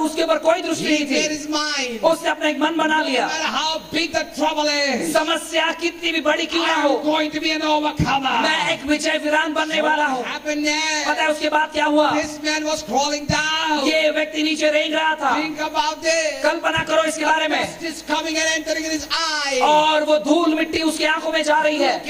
उसके ऊपर कोई दृष्टि He नहीं made थी। his mind. उसने अपना एक मन बना No लिया, matter how big the trouble is, समस्या कितनी भी बड़ी क्यों ना हो, I'm going to be an overcomer. मैं एक विजय वीरान बनने वाला हूँ। What happened पता है there? उसके बाद क्या हुआ? This man was crawling down. ये व्यक्ति नीचे रेंग रहा था। Think about this. कल्पना करो इसके बारे में। Dust is coming and entering in his eye. और वो धूल मिट्टी उसकी आंखों में जा रही है। Look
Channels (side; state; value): both; identical; correlation 1.00